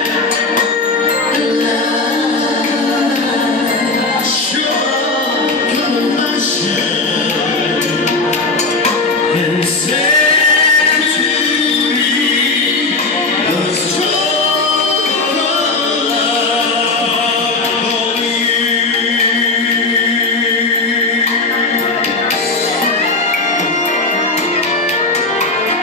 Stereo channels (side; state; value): right; quieter; 3.5 dB